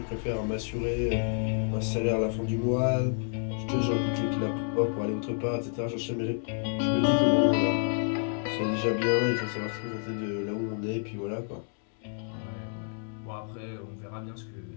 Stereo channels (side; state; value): right; silent; 58 dB below the other